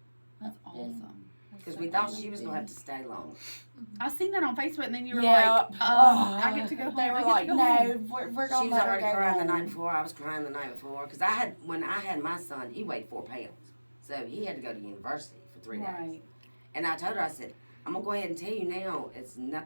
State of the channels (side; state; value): both; inverted; correlation -1.00